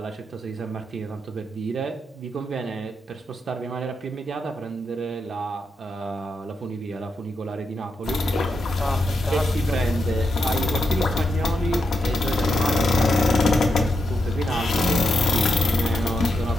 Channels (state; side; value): normal; both; correlation 0.84